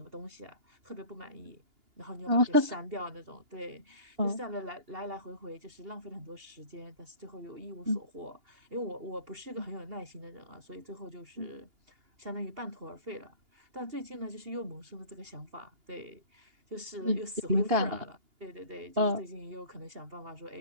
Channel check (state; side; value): late; left; 2.8 ms